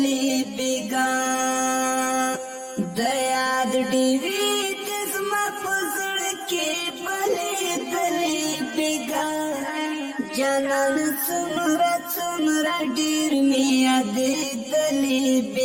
بېګا د یاد ډېوې دې زما په زړه کې بلېدلې بېګا جانانه څومره څومره ډېر مې یادېدلې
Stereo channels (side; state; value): both; identical; correlation 1.00